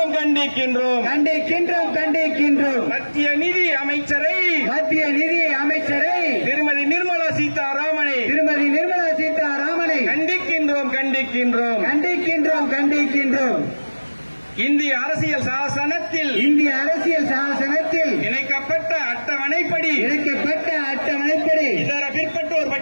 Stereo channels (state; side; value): inverted; both; correlation -1.00